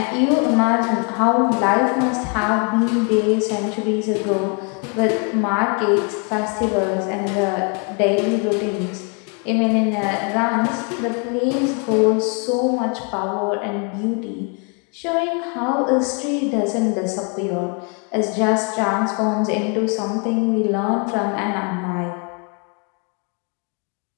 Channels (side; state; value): right; quieter; 36.9 dB